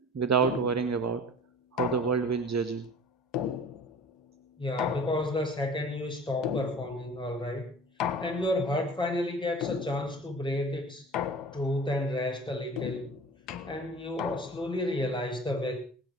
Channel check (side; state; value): both; normal; correlation 0.42